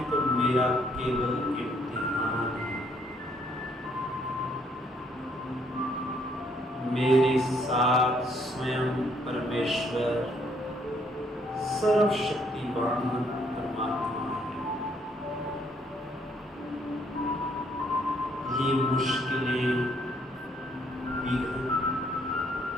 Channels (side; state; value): both; normal; correlation 0.68